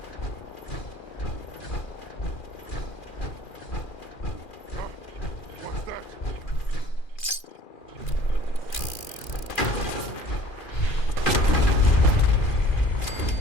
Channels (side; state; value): right; late; 2.4 ms